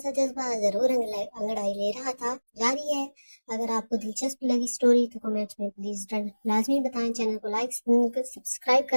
जज्बा जरूर अंगड़ाई ले रहा था। जारी है। अगर आपको दिलचस्प लगी स्टोरी तो कमेंट्स में प्लीज लाजमी बताएं। चैनल को लाइक सब्सक्राइब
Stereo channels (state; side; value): inverted; both; correlation -1.00